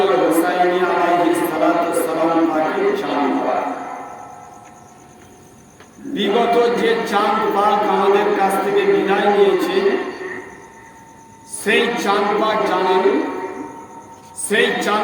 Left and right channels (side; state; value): both; identical; correlation 1.00